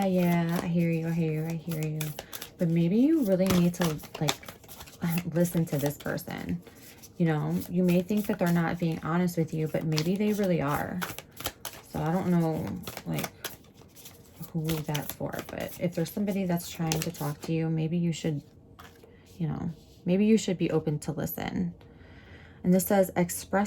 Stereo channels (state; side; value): identical; both; correlation 1.00